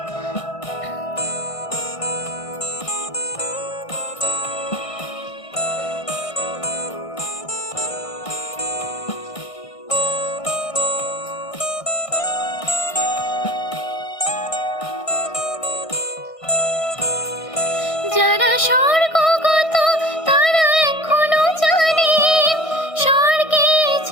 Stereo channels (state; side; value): late; right; 1.6 ms